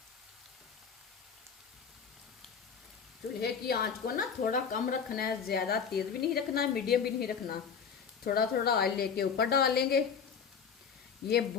चूल्हे की आंच को ना थोड़ा कम रखना है, ज्यादा तेज भी नहीं रखना, मीडियम भी नहीं रखना। थोड़ा थोड़ा ऑयल लेके ऊपर डाल लेंगे। ये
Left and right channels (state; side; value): quieter; right; 6.6 dB